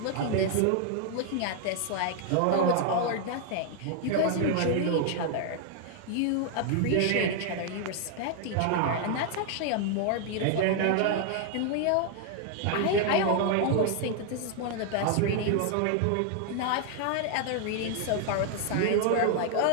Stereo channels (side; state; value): both; different; correlation 0.00